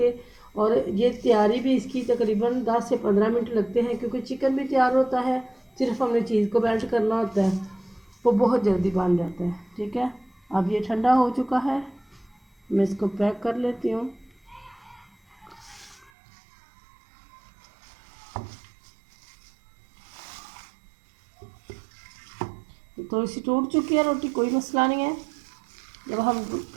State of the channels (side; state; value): left; drops out; at 16.1 s